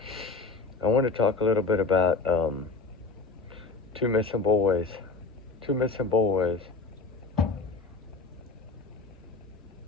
I want to talk a little bit about two missing boys. Two missing boys.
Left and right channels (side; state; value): right; quieter; 4.2 dB